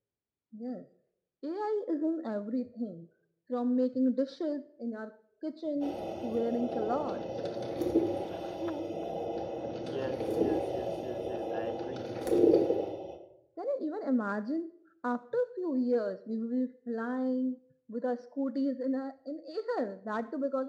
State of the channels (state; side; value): identical; both; correlation 1.00